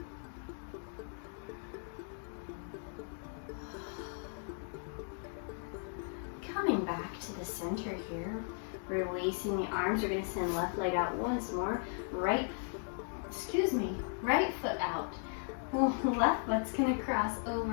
Coming back to the center here, releasing the arms. We're going to send left leg out once more. Right foot out. Left foot's going to cross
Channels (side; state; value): right; silent; 53 dB below the other